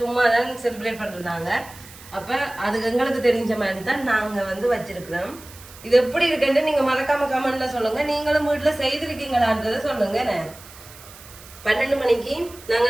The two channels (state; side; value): noise; right; hiss, 19 dB below the sound